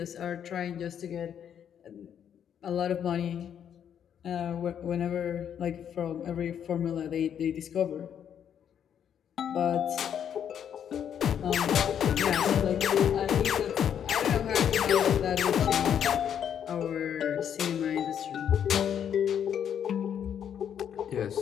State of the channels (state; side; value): quieter; right; 8.8 dB